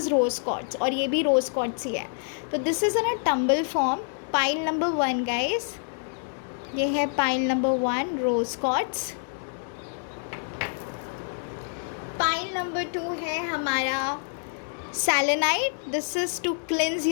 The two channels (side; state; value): right; silent; digital silence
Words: रोज़ क्वार्ट्ज और ये भी रोज़ क्वार्ट्ज ही है। तो this is in a tumble form. Pile number 1 guys, ये है pile number 1 rose quartz. Pile number 2 है हमारा selenite. This is to cleanse